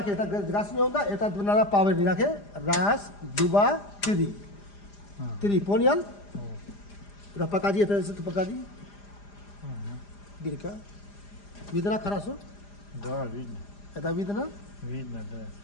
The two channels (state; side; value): late; right; 4.9 ms